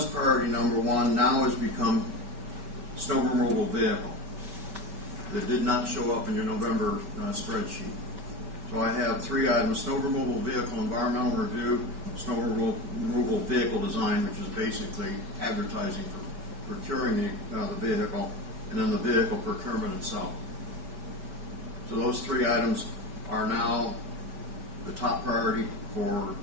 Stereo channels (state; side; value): late; left; 5.3 ms